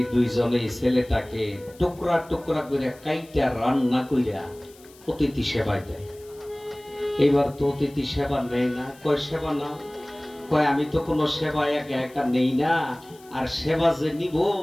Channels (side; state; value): left; noise; hiss, 25 dB below the sound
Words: দুইজনেই ছেলেটাকে টুকরা টুকরা করে কাইটা রান্না কইরা অতিথি সেবায় দেয়। এবার তো অতিথি সেবা নেয় না, কয় সেবা নাও, কয় আমি তো কোনো সেবা একা একা নেই না, আর সেবা যে নিব